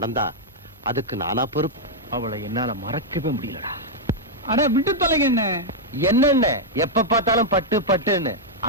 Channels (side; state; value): both; normal; correlation -0.04